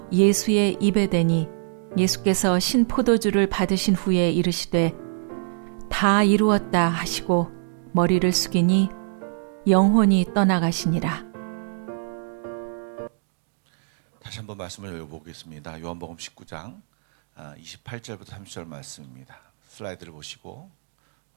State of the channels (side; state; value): left; silent; digital silence